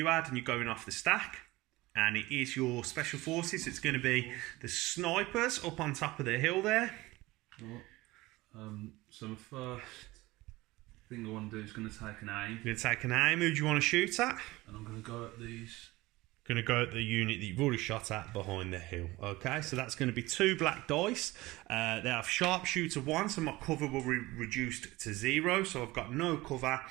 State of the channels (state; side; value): quieter; left; 19.9 dB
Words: Ad, and you're going off the stack. And it is your special forces. It's going to be the snipers up on top of the hill there. So my first thing I want to do is going to take an aim. You're going to take an aim. Who do you want to shoot at? And I'm going to go at these. Going to go at the unit that you've already shot at behind the hill. Okay, so that's going to be 2 black dice. They have sharpshooter 1, so my cover will be reduced to 0. So I've got no cover,